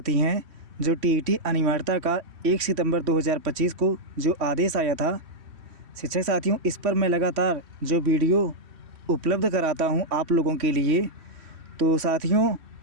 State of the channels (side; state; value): left; late; 3.1 ms